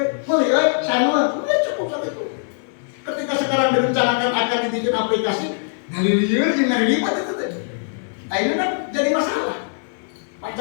melihat sama, cukup satu itu. Ketika sekarang direncanakan akan dibikin aplikasi, dari liur dengan ribet itu tadi. Nah ini kan jadi masalah.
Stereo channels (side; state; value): right; silent; digital silence